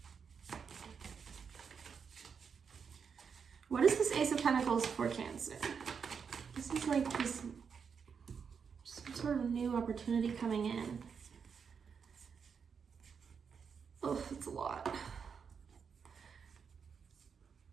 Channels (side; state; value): left; quieter; 6.3 dB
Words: What is this Ace of Pentacles for Cancer? This is like this sort of new opportunity coming in. Oh, it's a lot.